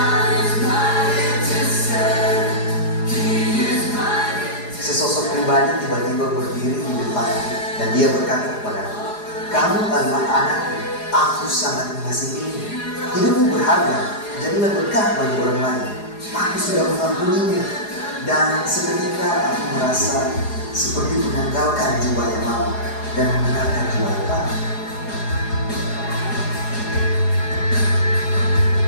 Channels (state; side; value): late; right; 4.8 ms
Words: Sesosok pribadi tiba-tiba berdiri di depan dan dia berkata kepadaku, "Kamu adalah anakku, aku sangat mengasihimu. Hidupmu berharga, jadilah berkah bagi orang lain. Aku sudah mengampunimu." Dan seketika aku merasa seperti menanggalkan jiwa yang lama dan mengenakan jiwa yang baru.